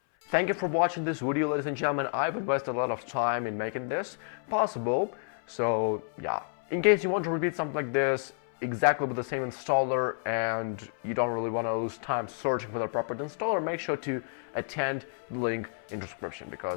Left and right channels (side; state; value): right; silent; 58 dB below the other